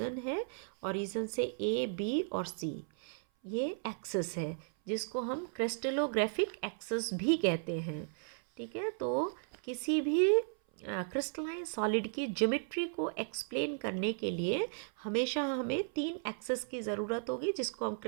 है, ओरिजिन से ए बी और सी ये एक्सिस है जिसको हम क्रिस्टलोग्राफिक एक्सिस भी कहते हैं। ठीक है। तो किसी भी क्रिस्टलाइन सॉलिड की ज्योमेट्री को एक्सप्लेन करने के लिए हमेशा हमें 3 एक्सिस की ज़रूरत होगी जिसको हम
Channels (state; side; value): silent; left; 54 dB below the other